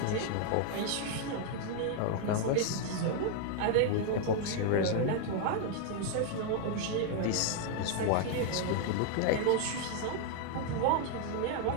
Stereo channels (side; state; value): both; different; correlation 0.00